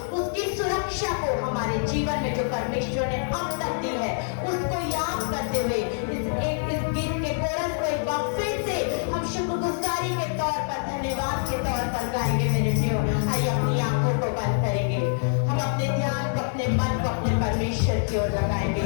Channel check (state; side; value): silent; right; digital silence